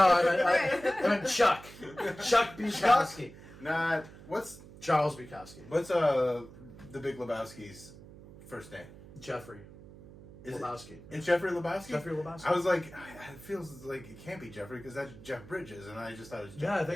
I meant Chuck. Chuck Bukowski. Not what's Charles Bukowski. the Big Lebowski's first name? Jeffrey Is it- Lebowski. It's Jeffrey Lebowski. Jeffrey Lebowski. I was like, it feels like it can't be Jeffrey because that's Jeff Bridges, and I just thought it was. Yeah, I Jeffrey.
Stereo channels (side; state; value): right; noise; hum, 18 dB below the sound